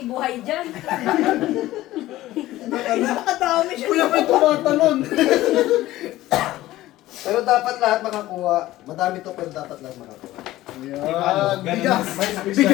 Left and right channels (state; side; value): quieter; right; 16.0 dB